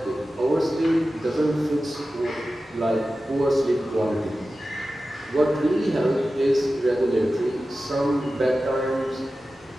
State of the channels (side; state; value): both; normal; correlation 0.94